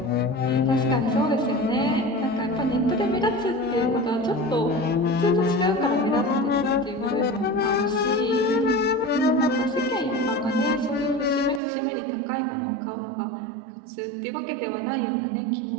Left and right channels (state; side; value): drops out; left; at 11.6 s